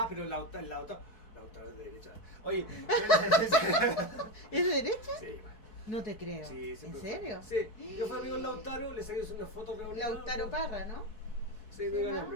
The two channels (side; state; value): right; late; 4.6 ms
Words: pero Lautaro es de derecha. Oye, ¿Es de derecha? sí, No te creo. sí, ¿En siempre serio? fue. Sí, yo fui amigo de Lautaro, le saqué una foto reunida. Lautaro Parra, ¿no? Sí, no diga